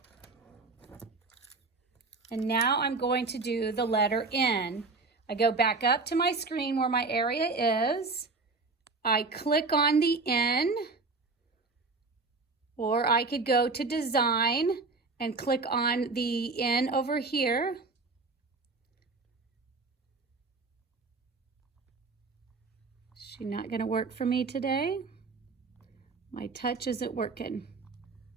And now I'm going to do the letter N. I go back up to my screen where my area is. I click on the N, or I could go to Design and click on the N over here. She's not going to work for me today. My touch isn't working.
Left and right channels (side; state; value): left; quieter; 3.9 dB